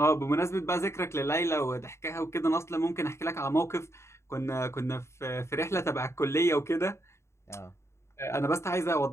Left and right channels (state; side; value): late; right; 0.13 ms